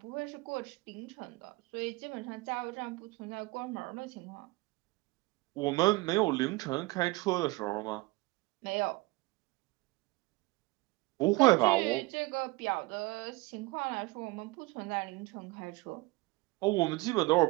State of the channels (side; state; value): left; quieter; 22.6 dB